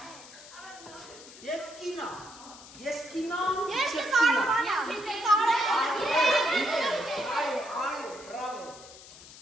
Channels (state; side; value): noise; left; hiss, 18 dB below the sound